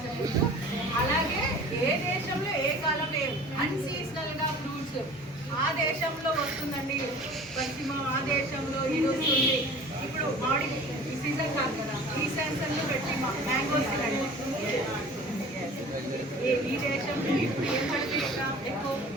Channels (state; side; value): normal; both; correlation 0.44